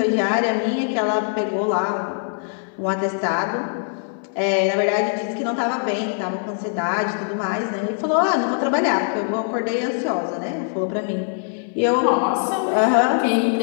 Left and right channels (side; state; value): right; silent; 59 dB below the other